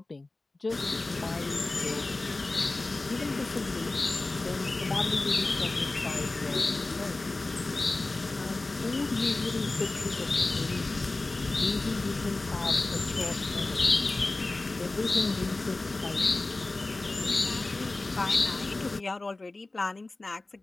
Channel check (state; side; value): quieter; right; 3.1 dB